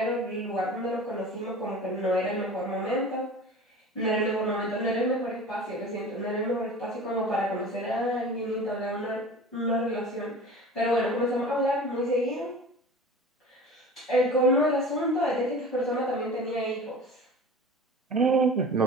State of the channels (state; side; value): normal; both; correlation 0.37